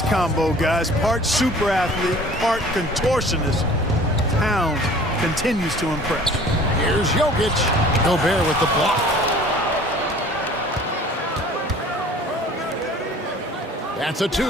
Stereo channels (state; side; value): normal; both; correlation 0.48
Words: combo, guys? Part super athlete, part contortionist. Towns continues to impress. Here's Jokic. Gobert with the block. That's a